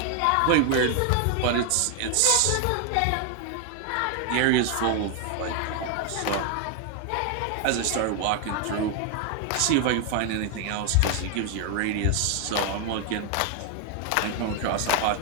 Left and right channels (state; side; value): different; both; correlation 0.00